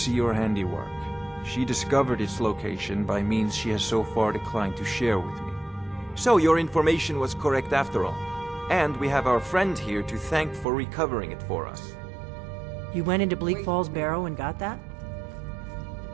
your handiwork. She discovered its location by means she has so far declined to share with me. So your information was correct after all. And we have our friend here to thank for recovering it for us. You went into Bleak Falls Barrow and got that?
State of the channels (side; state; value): left; drops out; at 10.7 s